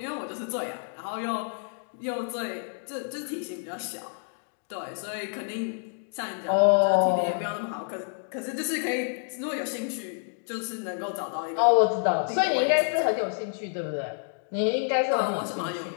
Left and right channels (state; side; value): silent; right; digital silence